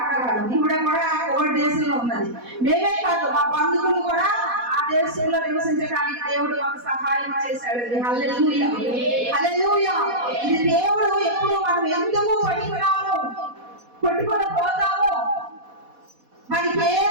ఈవిడ కూడా కోవిడ్ దేశంలో ఉన్నది. మేమే కాదు, మా బంధువులు కూడా ఆ దేశంలో నివసించడానికి దేవుడు మాకు సహాయం చేశాడు. హల్లెలూయా, హల్లెలూయా. ఇది దేవుడు ఎప్పుడు మనం ఎందుకు పనికిరాము, కొట్టుకొని పోతాము, మనకి ఏ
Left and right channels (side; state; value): left; late; 4.1 ms